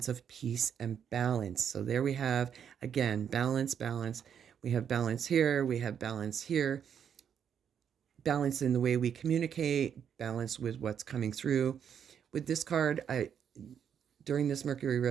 of peace and balance. So there we have, again, balance, balance. We have balance here. We have balance here. Balance in the way we communicate, balance with what's coming through. With this card, during this Mercury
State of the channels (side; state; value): left; quieter; 8.2 dB